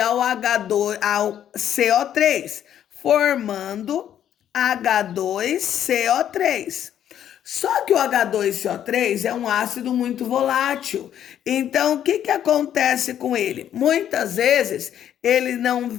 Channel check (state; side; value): quieter; right; 10.3 dB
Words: ao CO3, formando H2CO3. Só que o H2CO3 é um ácido muito volátil. Então, o que acontece com ele? Muitas vezes, ele não